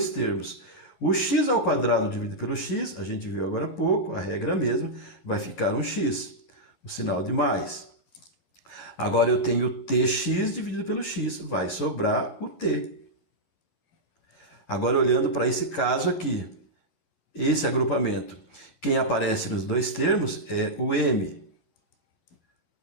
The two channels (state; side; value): late; right; 11 ms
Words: termos. O x ao quadrado dividido pelo x, a gente viu agora há pouco, a regra mesma, vai ficar um x, o sinal de mais. Agora eu tenho tx dividido pelo x, vai sobrar o t. Agora olhando para esse caso aqui, esse agrupamento, quem aparece nos dois termos é o m.